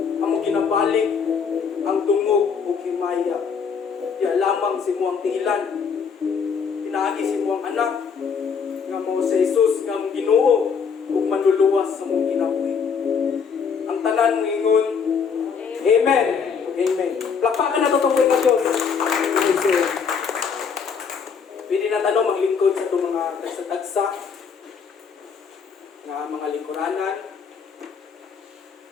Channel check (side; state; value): right; quieter; 6.1 dB